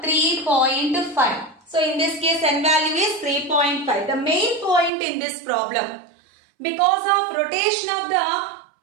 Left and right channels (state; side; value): drops out; left; at 4.9 s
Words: So, in this case n value is 3.5. The main point in this problem, because of rotation of the